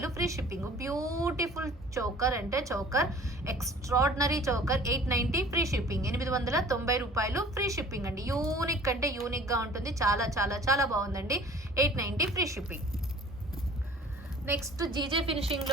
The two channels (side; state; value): both; normal; correlation 0.48